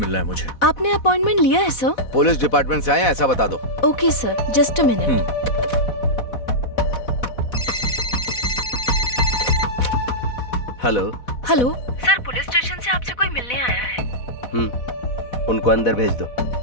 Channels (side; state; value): right; late; 4.1 ms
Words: है मुझे। आपने अपॉइंटमेंट लिया है सर? पुलिस डिपार्टमेंट से आए हैं, ऐसा बता दो। Okay sir, just a minute. Hello. Hello sir, police station से आपसे कोई मिलने आया है। उनको अंदर भेज दो।